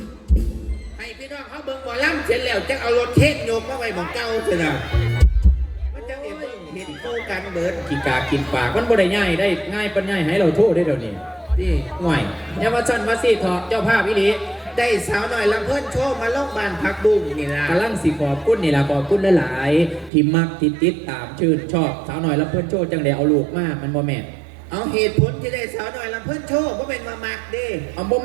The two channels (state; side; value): drops out; left; at 20.1 s